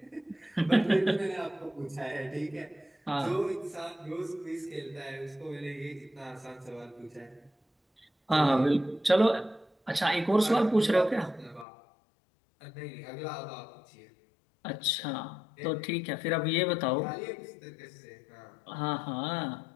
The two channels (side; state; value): right; drops out; at 11.7 s